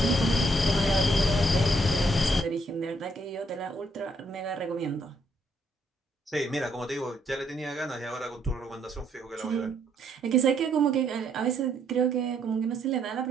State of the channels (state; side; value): normal; both; correlation 0.71